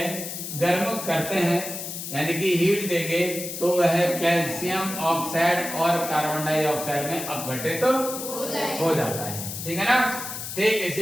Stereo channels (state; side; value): noise; left; hiss, 7 dB below the sound